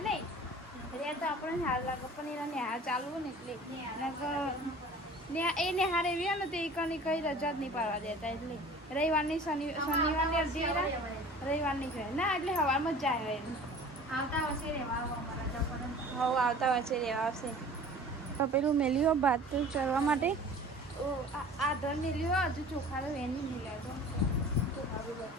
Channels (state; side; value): normal; both; correlation 0.44